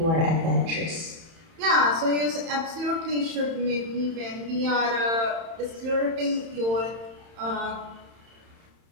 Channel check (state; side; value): late; left; 31 ms